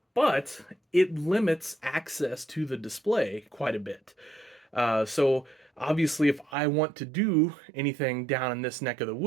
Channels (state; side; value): drops out; left; at 6.6 s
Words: but it limits access to the display quite a bit. So obviously, if I want to do anything down in this neck of the